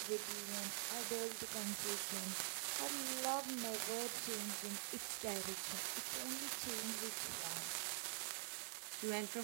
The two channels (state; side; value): silent; left; digital silence